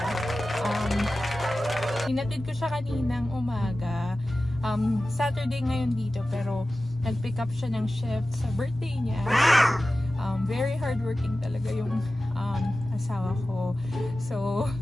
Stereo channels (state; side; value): normal; both; correlation 0.95